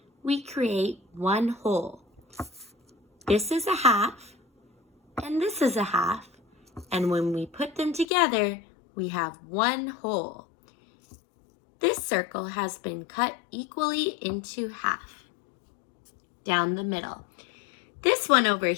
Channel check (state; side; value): drops out; right; at 8.1 s